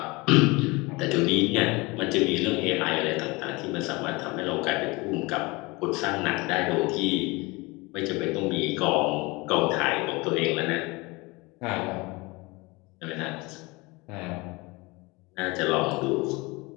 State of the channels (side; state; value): right; quieter; 24.7 dB